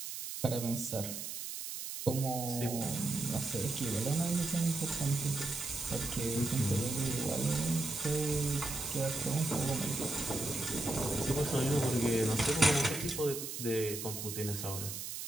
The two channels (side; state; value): right; noise; hiss, 6 dB below the sound